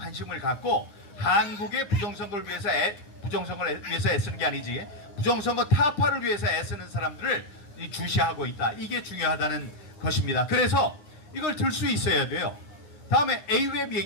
갖고 한국의 부정선거를 위해서 애쓰는 게 아니지 부정선거 타파를 위해서 애쓰는 사람들을 주시하고 있다. 이게 중요하다는 것입니다. 그래서 이걸 들 수 있어야 돼요. 다음에 AWEB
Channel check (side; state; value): right; late; 9.8 ms